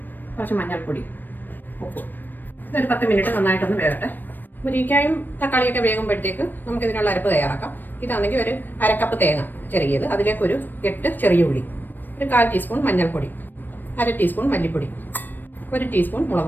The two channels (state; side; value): late; right; 0.091 ms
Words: കുറച്ച് മഞ്ഞൾപ്പൊടി, ഉപ്പ്. ഇതൊരു 10 മിനിറ്റ് നന്നായിട്ടൊന്ന് വേകട്ടെ. മുരിങ്ങയ്ക്കായും തക്കാളിയൊക്കെ വേകുമ്പോഴത്തേക്ക് നമുക്കിതിനുള്ള അരപ്പ് തയ്യാറാക്കാം. ഇതാണെങ്കിൽ ഒരു 1/2 കപ്പ് തേങ്ങ ചിരകിയത്, അതിലേക്ക് ഒരു 8 ചെറിയ ഉള്ളി, ഒരു 1/4 ടീസ്പൂൺ മഞ്ഞൾപ്പൊടി, 1/2 ടീസ്പൂൺ മല്ലിപ്പൊടി, 1 ടീസ്പൂൺ